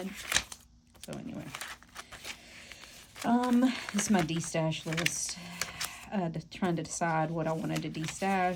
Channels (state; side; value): identical; both; correlation 1.00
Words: So anyway, this is my destash list. Trying to decide what I wanted to